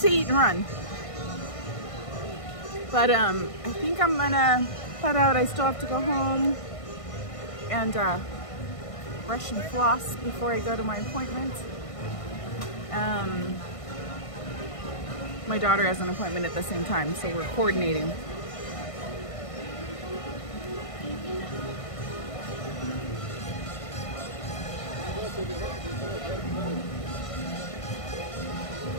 eat and run, but I think I'm gonna head out. I still have to go home and brush and floss before I go to my appointment. My daughter has an appointment at the same time, so we're coordinating.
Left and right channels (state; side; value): late; right; 1.5 ms